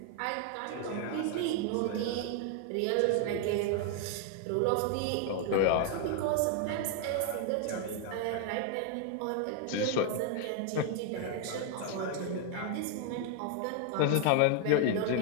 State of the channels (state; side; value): different; both; correlation 0.00